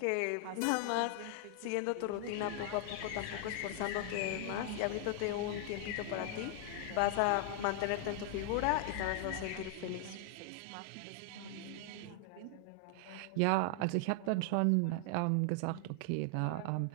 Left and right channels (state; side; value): different; both; correlation 0.00